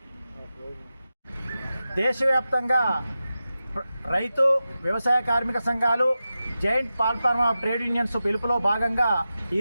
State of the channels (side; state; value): both; inverted; correlation -0.93